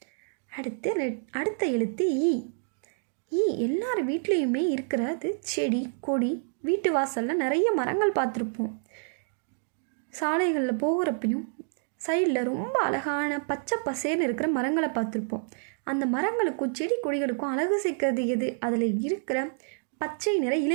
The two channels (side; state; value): left; silent; digital silence